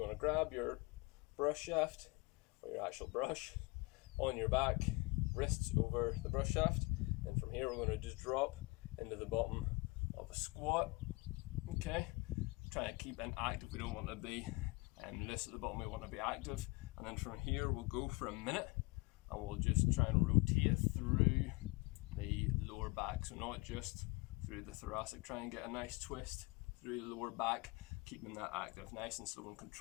to grab your brush shaft or your actual brush on your back, wrists over the brush shaft, and from here we're going to just drop into the bottom of a squat. Okay, try to keep it active. We don't want to be loose at the bottom, we want to be active. And then from here we'll go for a minute and we'll just try and rotate through the lower back, so not just through the thoracic. Try and get a nice twist through the lower back, keeping that active, nice and slow and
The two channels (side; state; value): right; quieter; 25.7 dB